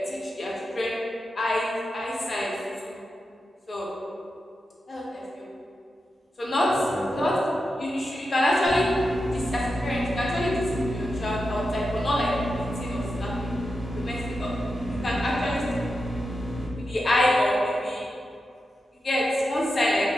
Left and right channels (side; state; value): both; normal; correlation 0.89